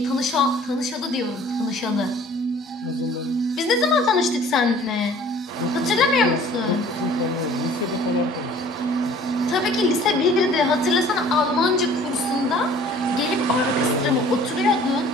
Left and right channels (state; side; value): normal; both; correlation 0.51